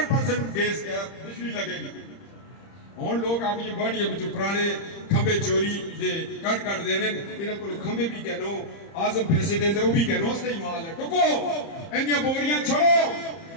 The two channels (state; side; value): late; right; 30 ms